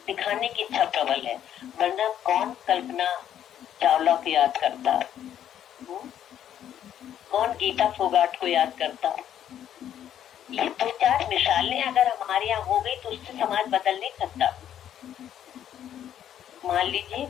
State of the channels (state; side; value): quieter; right; 10.3 dB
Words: दिखाने की इच्छा प्रबल है। वरना कौन कल्पना चावला को याद करता, कौन गीता फोगाट को याद करता? ये दो चार मिसालें अगर हमारे यहाँ हो गई तो उससे समाज बदल नहीं सकता। मान लीजिए